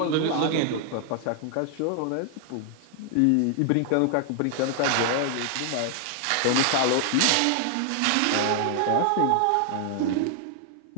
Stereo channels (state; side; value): different; both; correlation 0.00